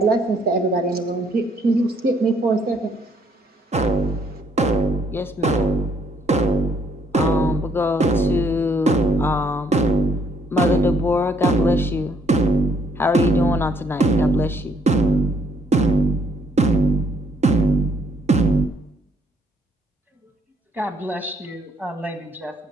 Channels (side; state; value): both; normal; correlation 0.66